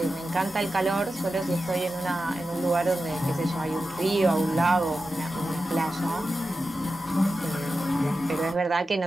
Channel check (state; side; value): normal; both; correlation 0.92